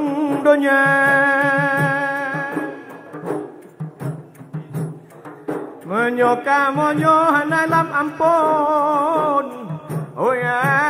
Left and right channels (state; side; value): identical; both; correlation 1.00